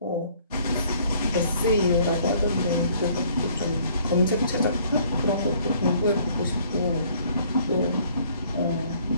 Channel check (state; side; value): inverted; both; correlation -0.60